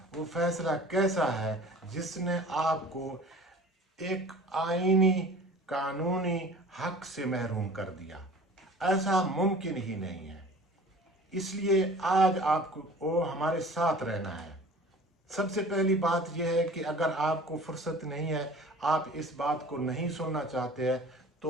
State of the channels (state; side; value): normal; both; correlation 0.44